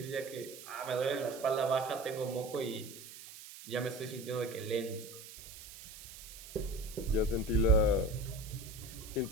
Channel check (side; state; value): right; noise; hiss, 14 dB below the sound